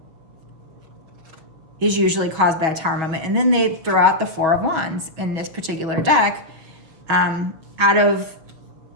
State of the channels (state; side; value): late; left; 6.2 ms